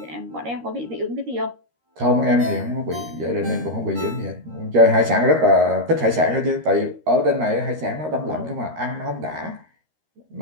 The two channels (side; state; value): left; late; 13 ms